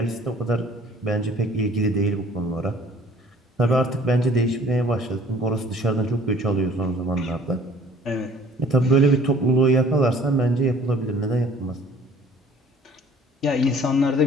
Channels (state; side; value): normal; both; correlation 0.52